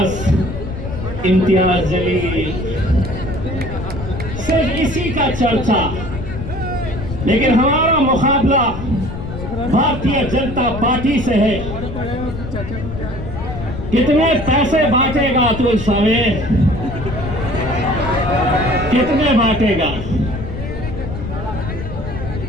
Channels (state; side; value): noise; left; rumble, 8 dB below the sound